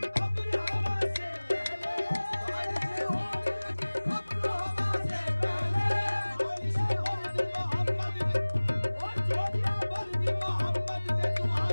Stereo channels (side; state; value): both; inverted; correlation -1.00